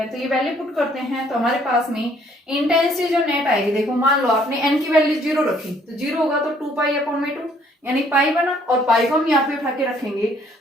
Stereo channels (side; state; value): both; normal; correlation 0.63